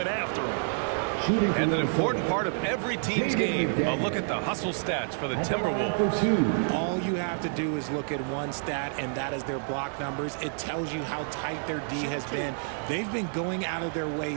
after him. And an important part of every team's game, a look at the hustle stats for the Timberwolves. All you have to do is look at one stat, and that is their block numbers. It tells you how tight their D has been. They've been going out of their way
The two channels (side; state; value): left; silent; 59 dB below the other